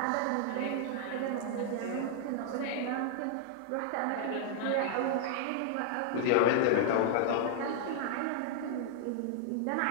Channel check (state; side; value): different; both; correlation 0.00